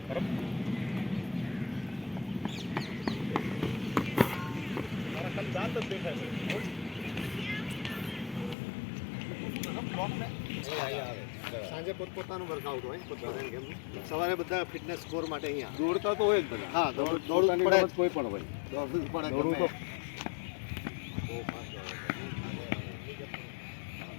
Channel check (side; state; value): right; drops out; at 8.6 s